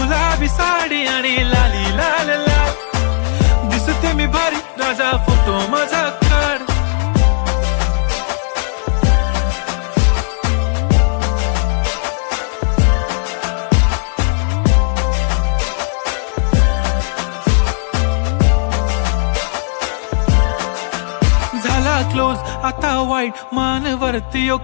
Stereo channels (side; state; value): right; silent; 69 dB below the other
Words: साडी आणि लाली लाल लाल, दिसते मी भारी राजा फोटो माझा काढ. झाला क्लोज आता वाईट, मानवरती